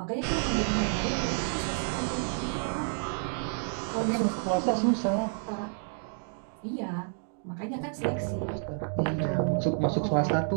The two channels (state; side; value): silent; left; 58 dB below the other